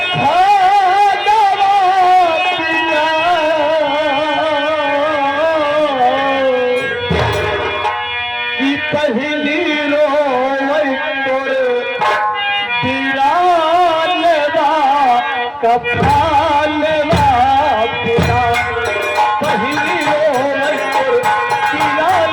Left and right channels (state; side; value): identical; both; correlation 1.00